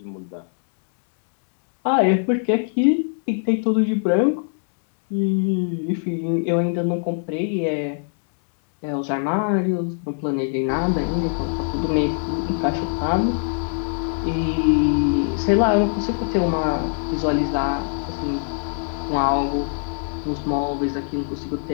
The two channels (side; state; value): right; silent; digital silence